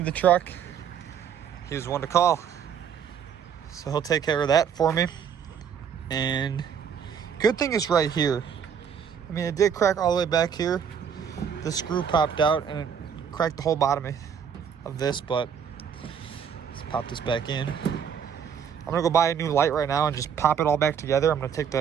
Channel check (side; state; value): left; quieter; 7.7 dB